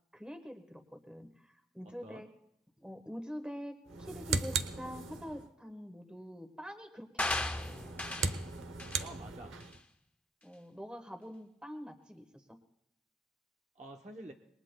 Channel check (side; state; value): both; normal; correlation 0.68